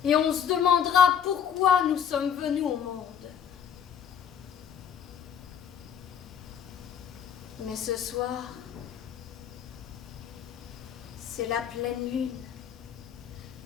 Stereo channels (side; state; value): right; quieter; 8.3 dB